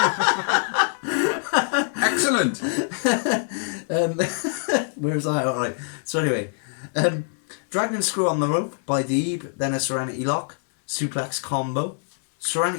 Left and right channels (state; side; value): silent; right; 63 dB below the other